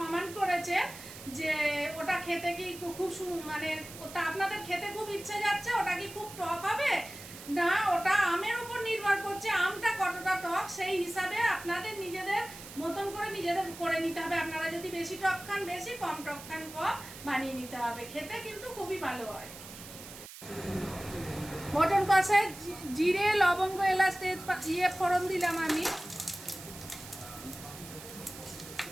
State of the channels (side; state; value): right; noise; hiss, 14 dB below the sound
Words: কমেন্ট করেছেন যে ওটা খেতে কি খুব মানে ওটা আপনাদের খেতে খুব ইচ্ছে যাচ্ছে, ওটা কি খুব টক হবে না? ওটা আমের উপর নির্ভর করছে, আমটা কতটা টক সেই হিসাবে আপনাদের নিজেদের মতন করে নিজেদের করে নিতে হবে। আপনারা যদি বেশি টক খান বেশি, কম টক খান কম, বানিয়ে নিতে হবে। খেতে কিন্তু খুবই ভালো হয়। মটন কষায় জিরে, লবঙ্গ, এলাচ, তেজপাতা ফোড়ন দিলাম আমি।